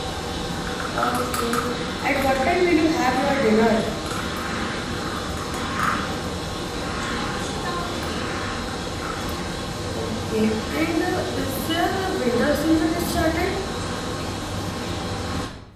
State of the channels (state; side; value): identical; both; correlation 1.00